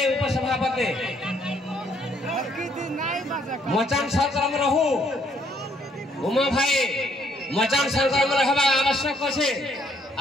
उपसभापति मचान सरकार में रहू उमा भाई मचान सरकार में रहबा आवश्यक छे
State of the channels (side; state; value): both; normal; correlation 0.68